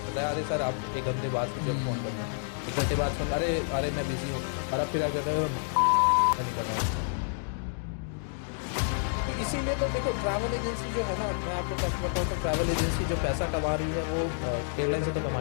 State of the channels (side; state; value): right; silent; digital silence